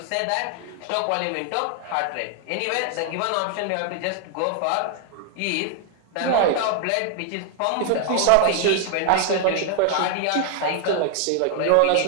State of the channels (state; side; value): different; both; correlation 0.00